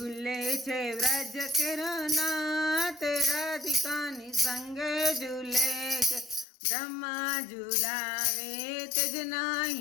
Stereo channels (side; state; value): right; drops out; at 6.5 s